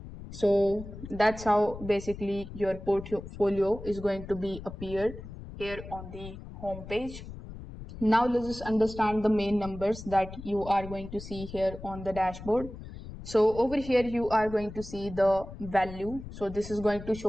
So that's how basically your portfolio is going to be appeared here on the home page. Now let's just understand the main numbers that you are going to see here on the dashboard. So over here you are going to see the value. So this is going to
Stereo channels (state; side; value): noise; left; rumble, 12 dB below the sound